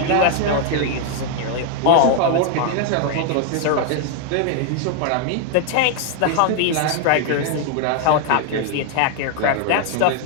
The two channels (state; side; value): different; both; correlation 0.00